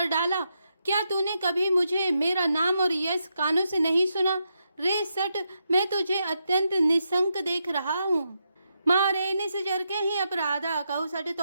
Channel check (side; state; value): both; inverted; correlation -0.83